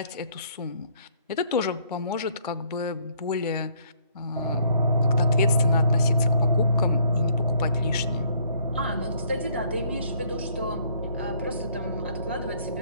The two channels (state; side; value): inverted; both; correlation -0.64